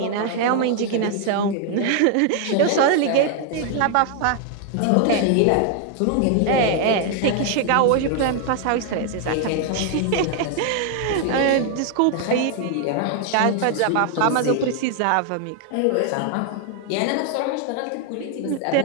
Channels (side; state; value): both; different; correlation 0.00